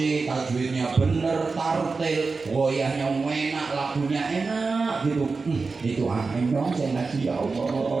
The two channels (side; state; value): left; quieter; 4.3 dB